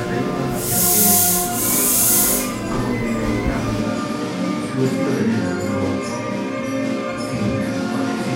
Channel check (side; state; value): both; identical; correlation 1.00